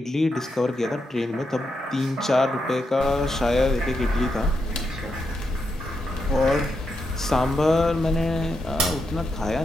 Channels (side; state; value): both; normal; correlation 0.84